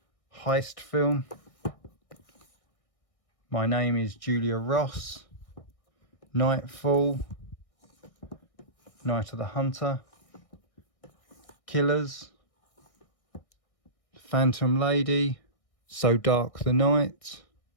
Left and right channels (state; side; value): late; right; 1.6 ms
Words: heist film, My Name is Julia Ross, Nightfall, Night of the Hunter, Killers, Phantom Lady, So Dark the Night.